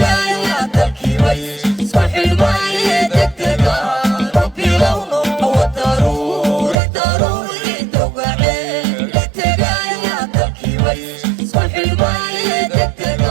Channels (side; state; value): left; drops out; at 6.8 s